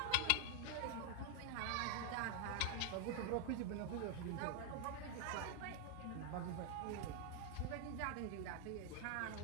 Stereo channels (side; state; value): both; different; correlation 0.00